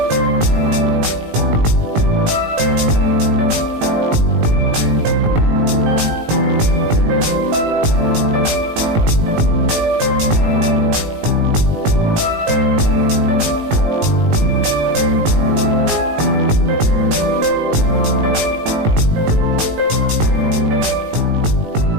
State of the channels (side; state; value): left; late; 19 ms